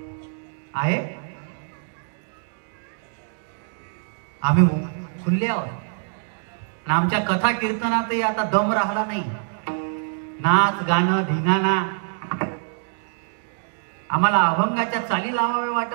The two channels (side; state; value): left; silent; digital silence